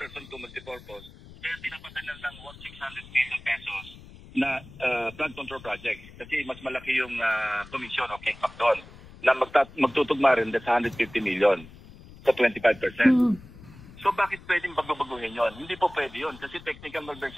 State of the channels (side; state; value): left; noise; rumble, 19 dB below the sound